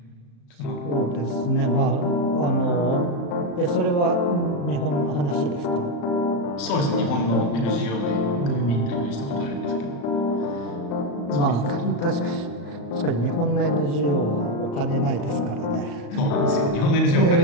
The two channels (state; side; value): late; right; 35 ms